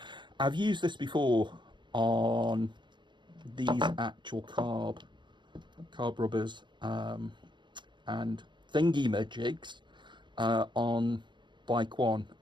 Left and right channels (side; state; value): left; late; 0.23 ms